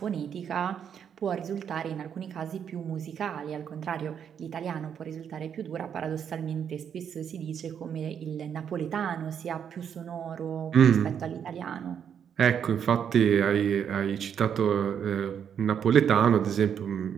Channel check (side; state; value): left; quieter; 8.1 dB